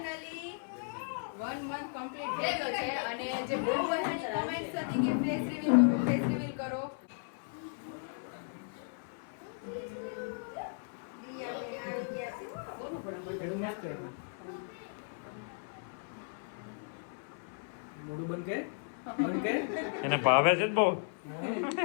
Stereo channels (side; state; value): right; silent; 54 dB below the other